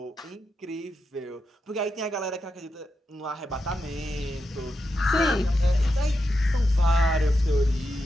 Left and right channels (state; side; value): normal; both; correlation 0.87